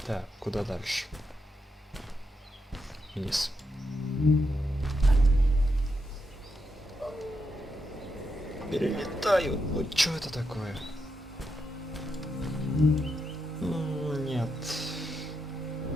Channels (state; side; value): normal; both; correlation 0.83